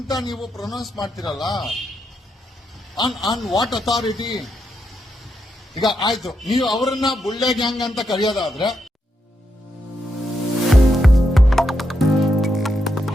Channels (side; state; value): both; normal; correlation 0.82